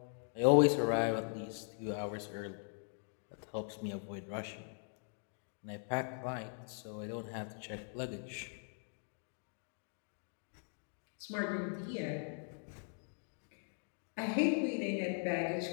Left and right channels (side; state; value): right; silent; 51 dB below the other